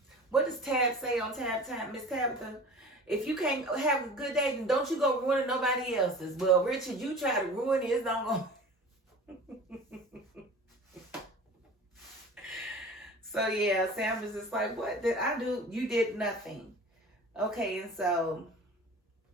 What does Tab say on Tab Time, Miss Tabitha? If you can't have a good day, then don't you go ruin nobody else's. Well, Richard, you try to ruin his, don't go. So yeah, Sam is just like, what did I do? You did nothing. Okay, and so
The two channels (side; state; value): both; normal; correlation 0.40